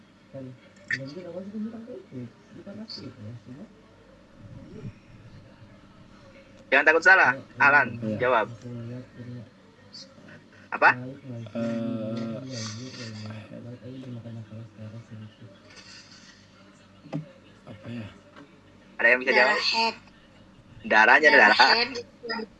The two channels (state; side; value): identical; both; correlation 1.00